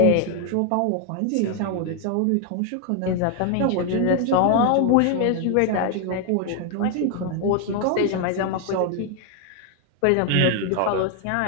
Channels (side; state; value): both; different; correlation 0.01